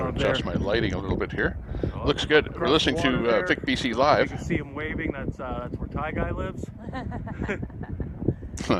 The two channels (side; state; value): both; identical; correlation 1.00